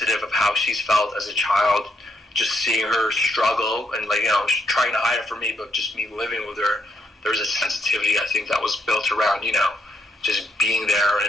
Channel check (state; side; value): normal; both; correlation 0.77